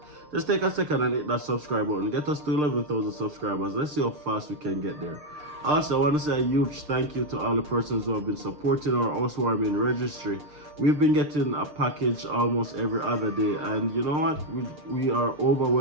just take a second and hit that subscribe button. Get us to 11,000 subscribers. Let's see how fast we can get there. Also, I want to say a huge thank you to all the persons who have been supporting our housewarming registry. We've been getting a package almost every other day, and you know what? We are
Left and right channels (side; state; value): left; late; 6.7 ms